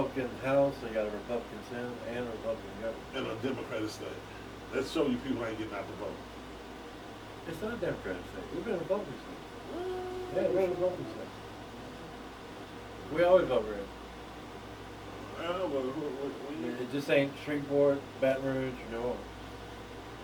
House, they got a Republican Senate, and a Republican government. in a Democratic state. Let's show you people ain't getting out the vote. It's not a Democratic state. We've been a Republican state. Yeah, we're a Republican state. We always vote red. It just ain't Shreveport, Baton Rouge, or New Orleans.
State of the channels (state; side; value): identical; both; correlation 1.00